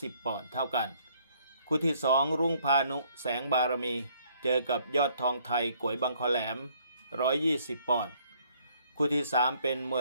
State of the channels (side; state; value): both; inverted; correlation -0.64